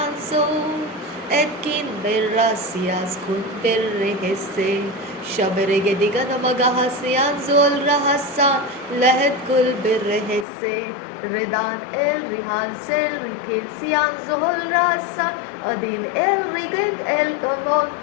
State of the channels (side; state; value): right; drops out; at 10.5 s